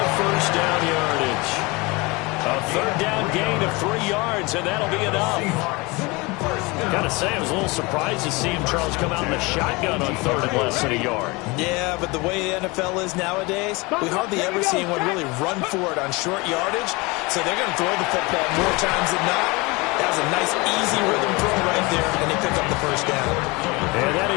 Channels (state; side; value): quieter; right; 25.2 dB